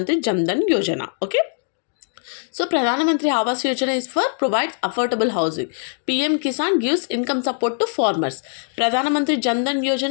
Jan Dhan Yojana. Okay. So Pradhan Mantri Awas Yojana is for provides affordable housing. PM Kisan gives income support to farmers. Pradhan Mantri Jan Dhan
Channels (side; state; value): right; silent; digital silence